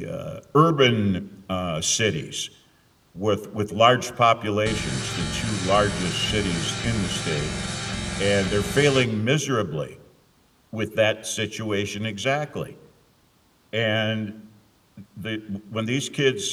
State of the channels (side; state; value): both; identical; correlation 1.00